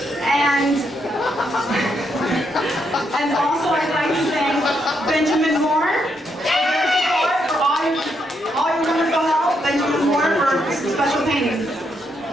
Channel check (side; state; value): both; normal; correlation 0.78